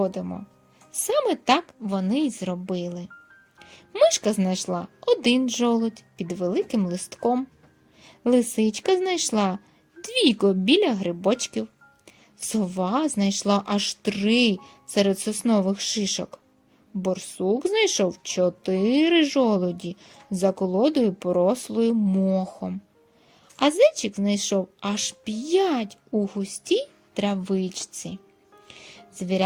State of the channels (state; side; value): identical; both; correlation 1.00